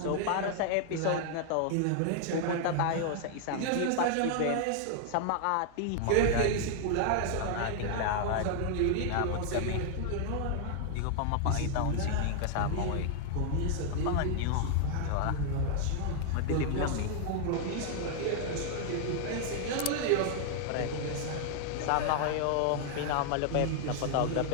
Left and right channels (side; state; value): both; different; correlation 0.00